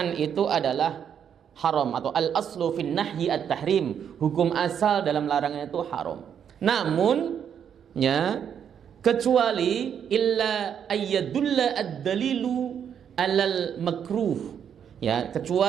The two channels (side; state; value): left; quieter; 8.3 dB